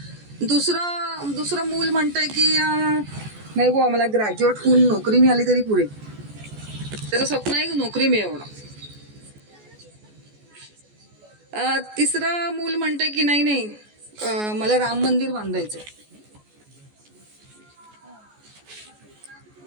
दुसरं मूल म्हणतंय की नाही बुवा मला ग्रॅज्युएट होऊन नोकरी मिळाली तरी पुरे. त्याचं स्वप्न आहे की नोकरी मिळवणं. तिसरं मूल म्हणतंय की नाही मला राम मंदिर बांधायचं.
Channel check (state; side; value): late; left; 14 ms